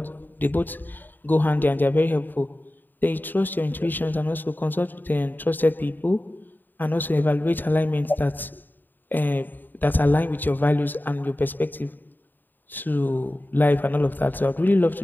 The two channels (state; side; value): late; right; 0.090 ms